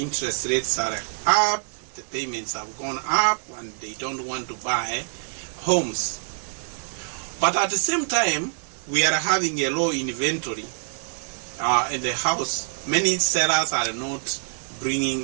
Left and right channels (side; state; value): left; silent; digital silence